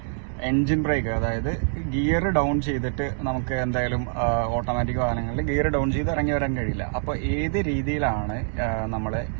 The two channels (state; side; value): silent; left; 59 dB below the other